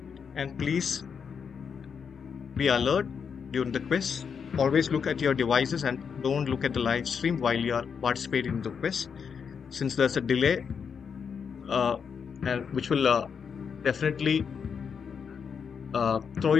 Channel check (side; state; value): right; quieter; 6.6 dB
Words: And please be alert during the quiz. Always look at your devices and don't look at the live stream while you are participating in the quiz, since there's a delay, uh, and which will definitely throw